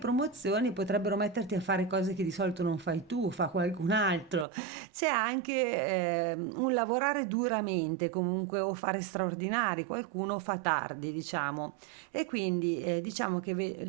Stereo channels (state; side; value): drops out; left; at 4.5 s